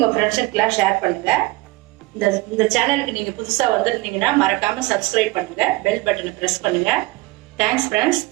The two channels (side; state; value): left; quieter; 21.2 dB